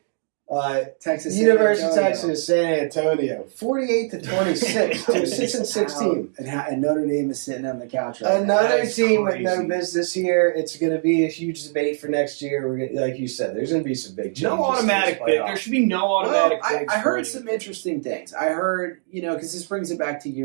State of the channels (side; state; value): left; silent; digital silence